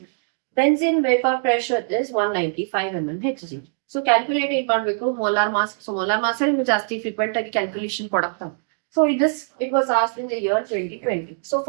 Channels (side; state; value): left; silent; digital silence